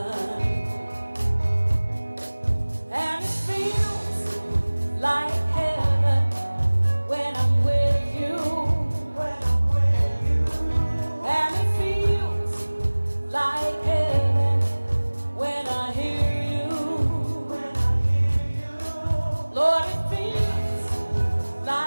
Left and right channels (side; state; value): both; inverted; correlation -1.00